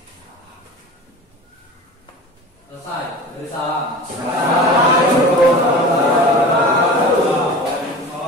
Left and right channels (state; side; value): normal; both; correlation 0.36